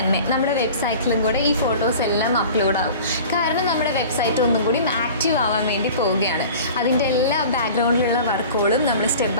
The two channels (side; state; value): both; inverted; correlation -0.41